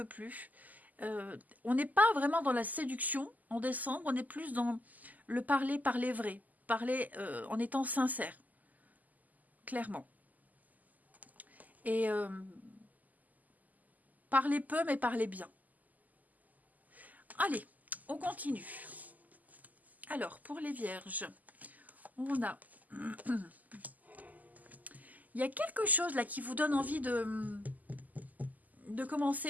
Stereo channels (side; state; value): left; late; 0.080 ms